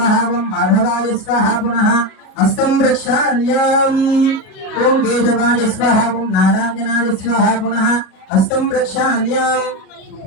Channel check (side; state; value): right; late; 37 ms